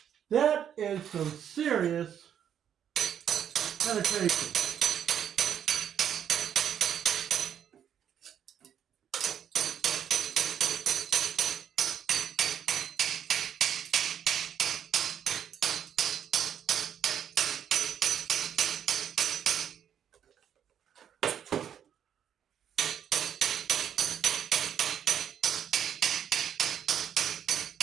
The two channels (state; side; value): quieter; left; 9.2 dB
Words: That is some serious penetration.